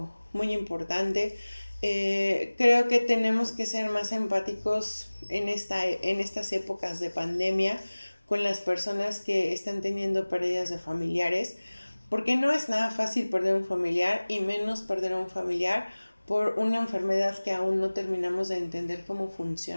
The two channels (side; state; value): both; inverted; correlation -1.00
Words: muy importante. Creo que tenemos que ser más empáticos en estas épocas de pandemia con las personas que están teniendo pérdidas de familiares, porque no es nada fácil perder un familiar y menos perder a un familiar por una enfermedad que aún no terminamos de entender cómo